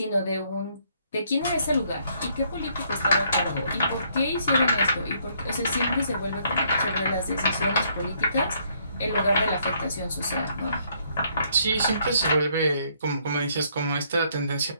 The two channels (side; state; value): both; inverted; correlation -0.68